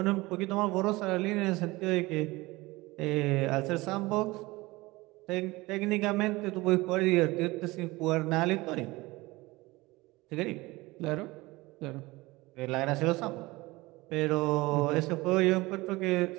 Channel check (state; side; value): quieter; left; 21.2 dB